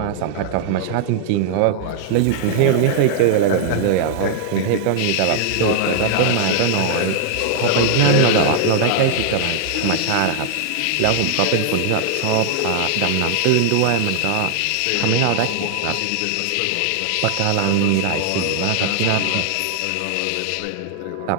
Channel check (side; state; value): both; different; correlation 0.00